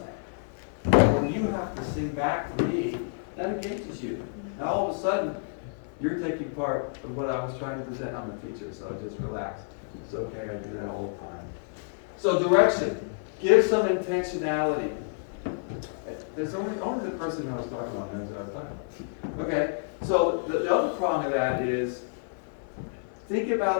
When you have to sing back to me, that engages you. Now all of a sudden, you're taking part of what I was trying to present. I'm a teacher, so just relax. It's okay, I do that all the time. So direction. Give some intentionality. There's only the person I was talking about knows what I was talking about. Okay, so the other prong of that is think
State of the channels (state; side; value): silent; right; 55 dB below the other